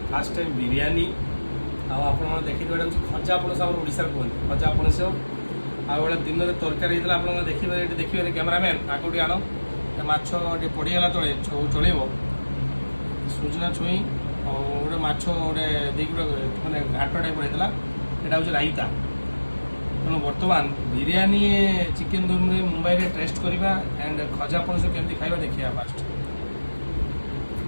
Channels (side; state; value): both; inverted; correlation -1.00